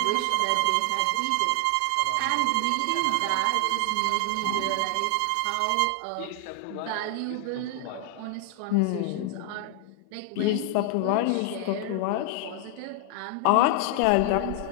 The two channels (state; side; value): different; both; correlation 0.00